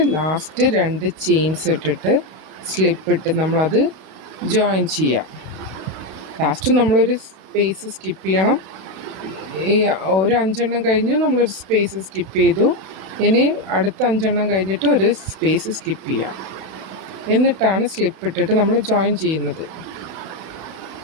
ലാസ്റ്റ് 2 ചെയിൻസ് ഇട്ടിട്ട് സ്ലിപ്പ് ഇട്ട് നമ്മളത് ജോയിൻ ചെയ്യാം. ലാസ്റ്റ് നമ്മളൊരു സ്പേസ് സ്കിപ്പ് ചെയ്യണം. ഈ ഒരു 5 എണ്ണം കഴിഞ്ഞ് നമ്മളൊരു സ്പേസ് സ്കിപ്പ് ചെയ്തു. ഇനി അടുത്ത 5 എണ്ണം കഴിഞ്ഞിട്ട് ഒരു സ്പേസ് സ്കിപ്പ് ചെയ്യാം. എന്നിട്ടാണ് സ്ലിപ്പ് ഇട്ടിട്ട് നമ്മൾ ജോയിൻ ചെയ്യുന്നത്.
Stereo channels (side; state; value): left; late; 32 ms